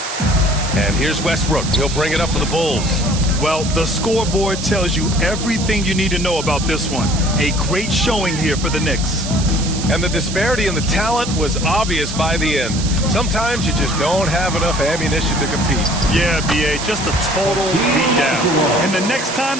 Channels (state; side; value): noise; right; hiss, 8 dB below the sound